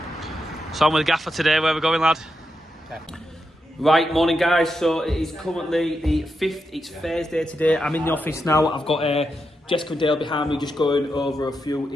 So I'm with the gaffer today. Where are we going, lad? Okay. Right, morning guys. So it is currently the 5th. It's Thursday today. I'm in the office now. I've got Jessica and Dale behind me, just going over a few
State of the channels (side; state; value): both; normal; correlation 0.85